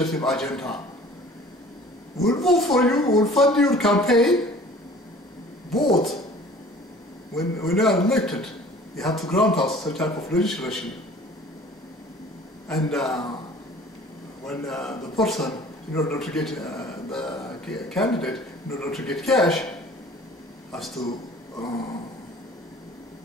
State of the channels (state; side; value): normal; both; correlation 0.48